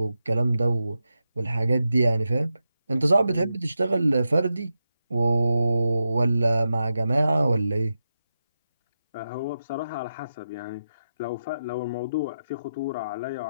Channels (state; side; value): inverted; both; correlation -0.88